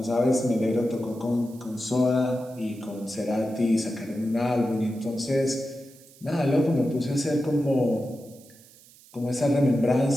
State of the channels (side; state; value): right; noise; hiss, 24 dB below the sound